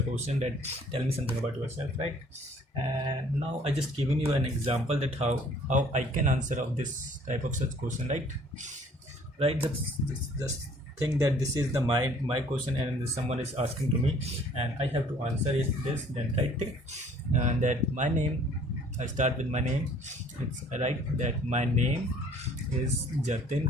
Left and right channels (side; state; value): both; normal; correlation 0.56